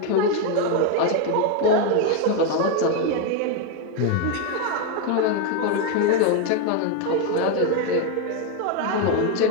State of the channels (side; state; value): both; different; correlation 0.02